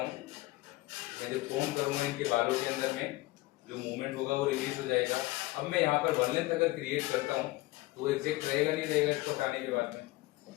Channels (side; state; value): right; quieter; 19.8 dB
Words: मैं जब कोम करूंगा इनके बालों के अंदर में, जो मूवमेंट होगा वो रिलीज हो जाएगा। अब मैं यहाँ पर वन लेंथ अगर क्रिएट करता हूँ तो वो एग्जैक्ट रहेगा नहीं रहेगा? इसको हटाने के बाद में